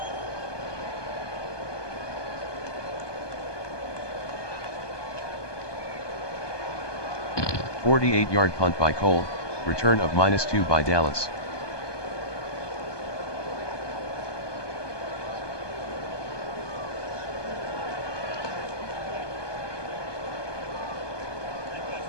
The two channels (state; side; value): late; right; 1.2 ms